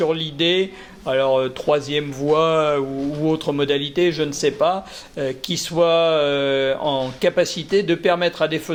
l'idée, alors troisième voie ou autre modalité, je ne sais pas, qui soit en capacité de permettre à des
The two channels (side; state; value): both; identical; correlation 1.00